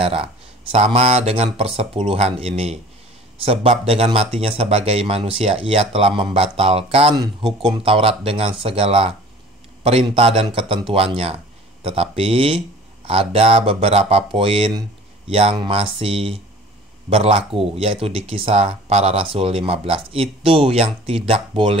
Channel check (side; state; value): both; normal; correlation 0.46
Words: Sama dengan persepuluhan ini. Sebab dengan matinya sebagai manusia, ia telah membatalkan hukum Taurat dengan segala perintah dan ketentuannya. Tetapi ada beberapa poin yang masih berlaku, yaitu di Kisah Para Rasul 15. Itu yang tidak